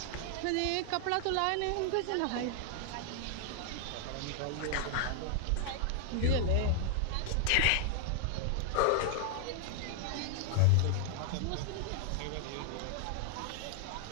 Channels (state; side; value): different; both; correlation 0.00